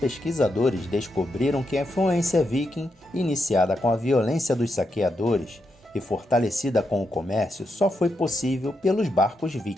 descobriram que a influência viking, iniciada com a violência dos saqueadores e fortalecida com o comércio, só foi possível pelos barcos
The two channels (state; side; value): normal; both; correlation 0.83